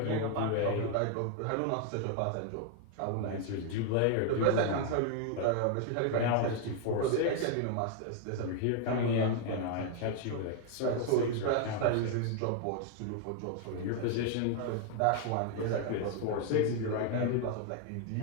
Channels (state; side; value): different; both; correlation 0.00